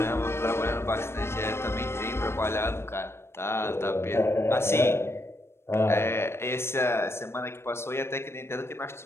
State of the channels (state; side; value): late; right; 0.12 ms